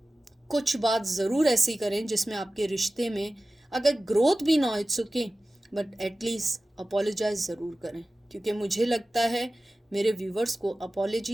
कुछ बात ज़रूर ऐसी करें जिसमें आपके रिश्ते में अगर ग्रोथ भी ना हो, it's okay, but at least apologise ज़रूर करें। क्योंकि मुझे लगता है मेरे व्यूवर्स को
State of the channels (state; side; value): normal; both; correlation 0.95